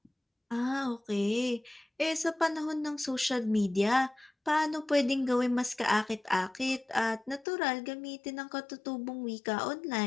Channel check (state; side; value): drops out; right; at 7.5 s